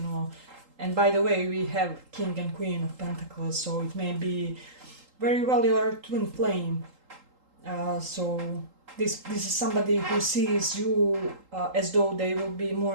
know. And by the way, we have King and Queen of Pentacles, so it may be very well your twin flame. So this is somebody who sees you as though they will be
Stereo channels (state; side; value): late; left; 3.8 ms